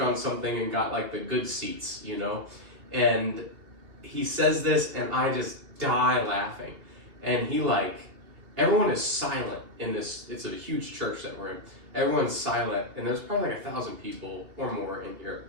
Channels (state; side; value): late; left; 3.0 ms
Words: on something and got like the good seats, you know? And he says this and I just die laughing. And he like, everyone is silent in this, it's a huge church that we're in. Everyone's silent and there's probably like 1,000 people or more in here.